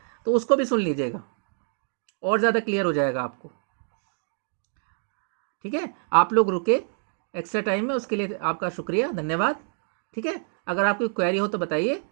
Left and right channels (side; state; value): left; silent; 61 dB below the other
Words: तो उसको भी सुन लीजिएगा, और ज़्यादा क्लियर हो जाएगा आपको, ठीक है। आप लोग रुके एक्स्ट्रा टाइम में, उसके लिए आपका शुक्रिया, धन्यवाद, ठीक है। अगर आपकी क्वेरी हो तो बताइए,